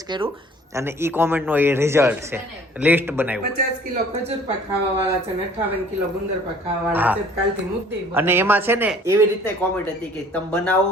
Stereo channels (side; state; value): both; normal; correlation 0.53